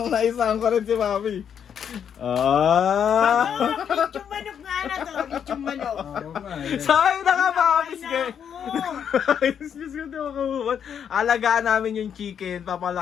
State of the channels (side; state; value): right; quieter; 8.2 dB